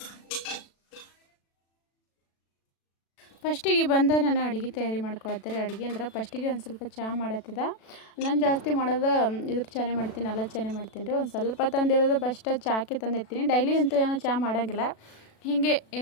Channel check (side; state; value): right; late; 36 ms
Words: ಫಸ್ಟಿಗೆ ಬಂದು ನಾನು ಅಡುಗೆ ತಯಾರಿ ಮಾಡ್ಕೊಳ್ತಾರೆ. ಅಡುಗೆ ಅಂದ್ರೆ ಫಸ್ಟಿಗೆ ಒಂದು ಸ್ವಲ್ಪ ಚಹಾ ಮಾಡತ್ತಿದ್ದ. ನಾನು ಜಾಸ್ತಿ ಮಾಡೋದು ಇದ್ರ ಚಹಾನೇ ಮಾಡ್ತೀನಿ, ಅಲ್ಲದ ಚಹಾನೇ ಮಾಡ್ತೀನಿ ರೀ. ಒಂದು ಸ್ವಲ್ಪ ತಂದಿರೋದು ಫಸ್ಟ್ ಚಹಾಕ್ಕೆ ತಂದಿರ್ತೀನಿ. ಡೈಲಿ ಅಂತೂ ಏನೋ ಚಹಾ ಮಾಡೋಂಗಿಲ್ಲ, ಹೀಗೆ